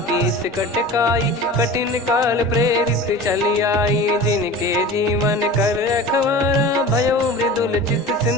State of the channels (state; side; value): normal; both; correlation 0.36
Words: कीस कटकाई, कठिन काल प्रेरित चली आई। जिनके जीवन कर रखवारा, भयो मृदुल चित